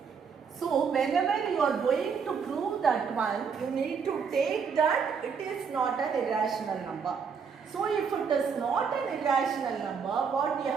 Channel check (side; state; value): left; quieter; 6.1 dB